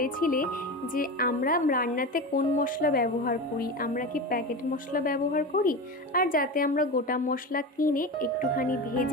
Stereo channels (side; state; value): both; normal; correlation 0.25